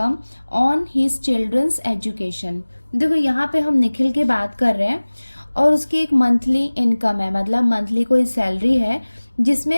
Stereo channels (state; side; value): inverted; both; correlation -1.00